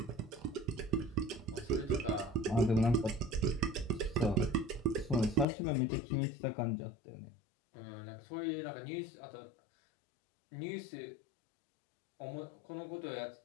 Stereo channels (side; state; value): right; drops out; at 5.5 s